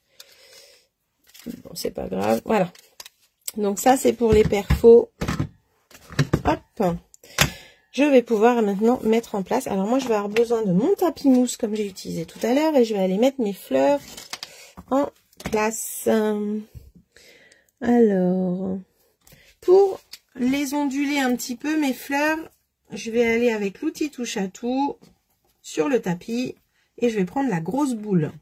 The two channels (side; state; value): both; identical; correlation 1.00